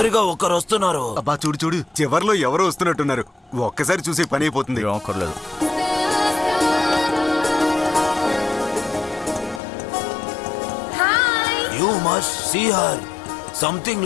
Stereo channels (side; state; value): right; drops out; at 9.6 s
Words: ఒకరు వస్తున్నారు. అబ్బా చూడు చూడు, చివర్లో ఎవరో వస్తున్నట్టున్నారు. ఒక్కసారి చూసి పని అయిపోతుంది. రాకర్లేదు. You must see her. Something